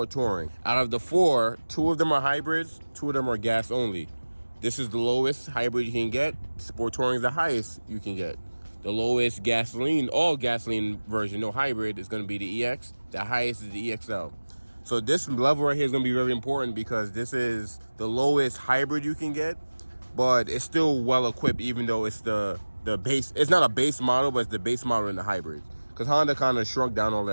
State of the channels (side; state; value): both; inverted; correlation -1.00